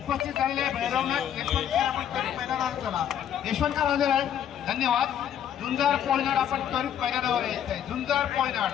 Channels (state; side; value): quieter; right; 9.7 dB